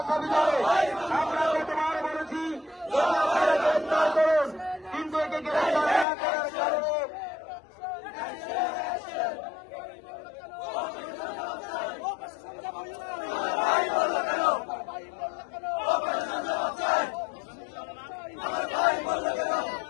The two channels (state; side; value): drops out; right; at 6.1 s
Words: হবে। আমরা গতবার বলেছি গ্রেফতার করুন, কিন্তু একে গ্রেফতার না করার কারণে